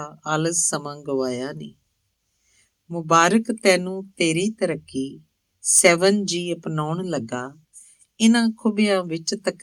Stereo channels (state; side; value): identical; both; correlation 1.00